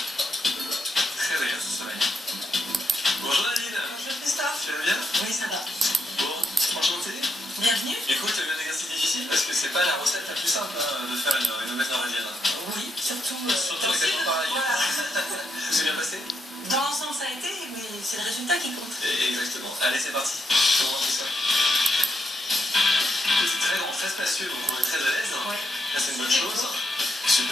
Tu vas bien? Oui, ça va. Bon, enchanté. Bienvenue. Écoute, tu as eu un exercice difficile parce que c'est pas la recette la plus simple de faire une omelette norvégienne. Oui, surtout avec des pareil. Voilà. C'est bien passé? Dans l'ensemble, ça a été, mais c'est le résultat qui compte. Exactement. Allez, c'est parti. Comment on fait ça? C'est très grand, très spacieux, donc on est très à l'aise. Oui. Là, c'est une bonne chose.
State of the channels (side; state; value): both; normal; correlation 0.80